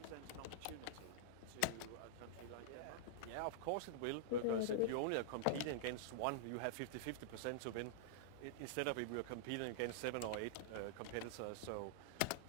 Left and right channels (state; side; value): different; both; correlation -0.02